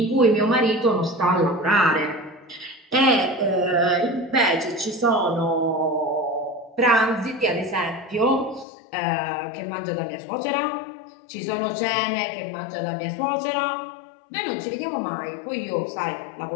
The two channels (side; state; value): right; drops out; at 8.7 s